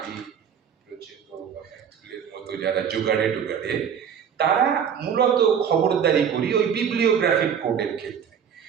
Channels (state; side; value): quieter; left; 7.8 dB